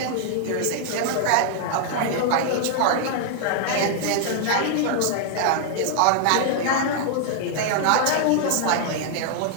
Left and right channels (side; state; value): both; different; correlation -0.01